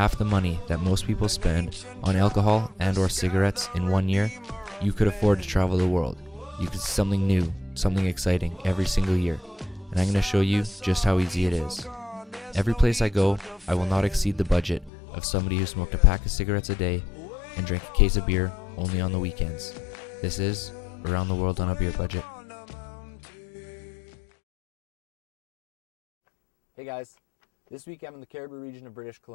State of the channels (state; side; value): drops out; right; at 14.9 s